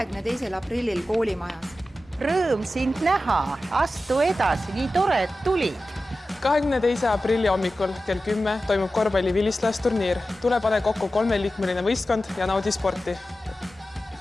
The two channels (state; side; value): normal; both; correlation 0.94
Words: aprillil koolimajas. Rõõm sind näha, astu edasi, nii tore, et tulid. 22. aprilli hommikul kell 10 toimub korvpalli vilistlasturniir. Tule pane kokku 3-liikmeline võistkond ja naudi sporti.